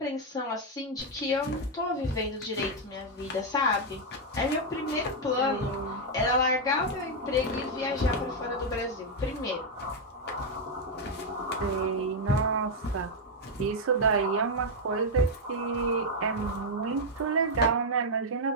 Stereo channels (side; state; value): both; normal; correlation 0.00